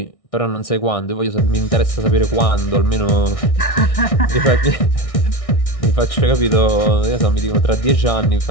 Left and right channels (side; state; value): right; late; 1.6 ms